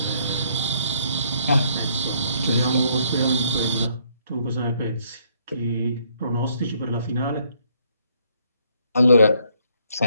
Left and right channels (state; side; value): inverted; both; correlation -0.68